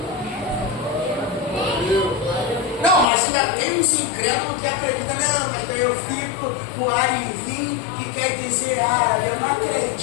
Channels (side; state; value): right; drops out; at 3.1 s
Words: Não, mas ainda tem uns incrédulos que acreditam, não, mas daí eu fico com arivim, que quer dizer árabe. Eu não